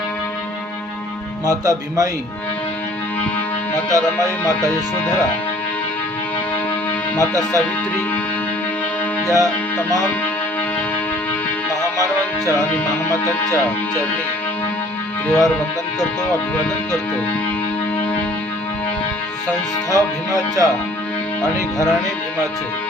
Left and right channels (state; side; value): normal; both; correlation 0.54